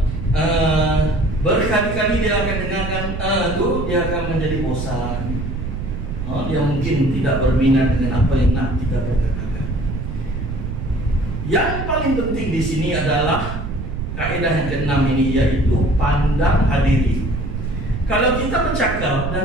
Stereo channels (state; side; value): noise; right; rumble, 5 dB below the sound